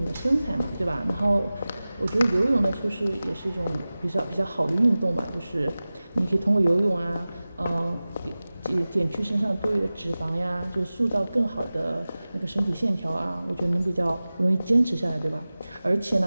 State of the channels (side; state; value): both; inverted; correlation -0.97